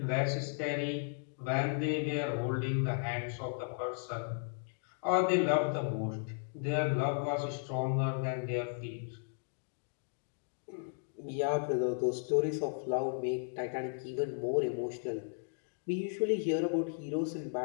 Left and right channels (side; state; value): right; silent; digital silence